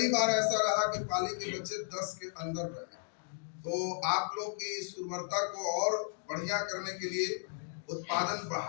बार ऐसा रहा कि पाली के बच्चे 10 के अंदर रहे। तो आप लोग की इस उर्वरता को और बढ़िया करने के लिए, उत्पादन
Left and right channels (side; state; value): right; silent; digital silence